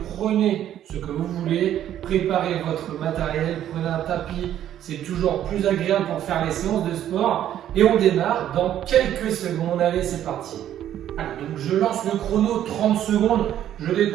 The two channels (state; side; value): quieter; left; 11.2 dB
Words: prenez ce que vous voulez, préparez votre matériel, prenez un tapis, c'est toujours plus agréable pour faire les séances de sport. Et on démarre dans quelques secondes. Allez, c'est parti. Alors, donc je lance le chrono, 30 secondes, je